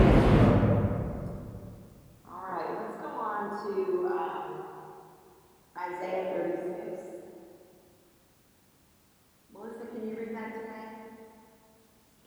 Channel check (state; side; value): identical; both; correlation 1.00